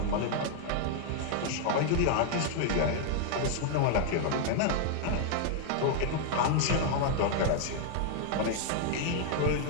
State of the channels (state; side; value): different; both; correlation 0.00